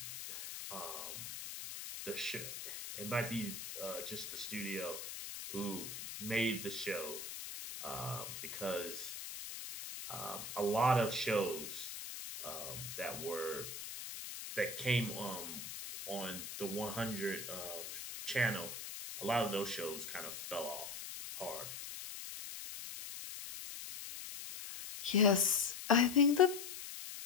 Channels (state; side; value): noise; left; hiss, 8 dB below the sound